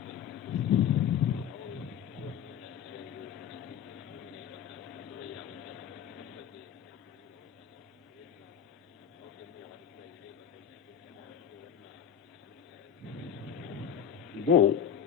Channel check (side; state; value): right; quieter; 8.7 dB